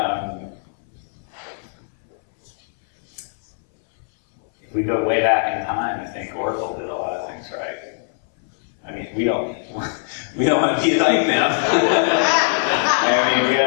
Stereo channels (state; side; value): silent; right; 62 dB below the other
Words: if we go way back in time, I think Oracle did a lot of things right. I mean, we don't want to be like them. I mean, we